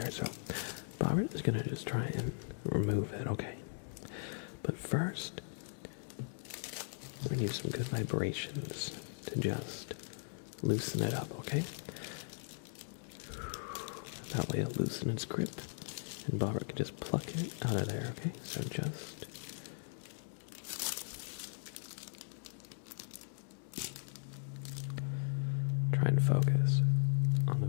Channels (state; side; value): silent; right; digital silence